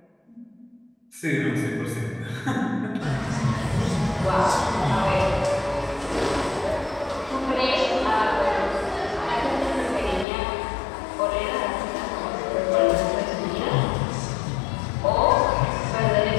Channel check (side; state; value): right; drops out; at 10.2 s